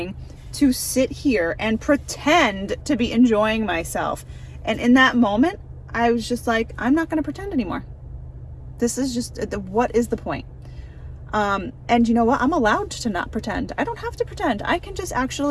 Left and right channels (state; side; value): identical; both; correlation 1.00